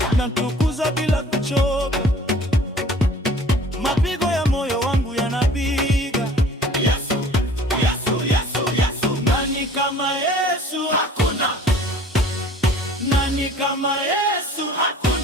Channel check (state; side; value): normal; both; correlation 0.49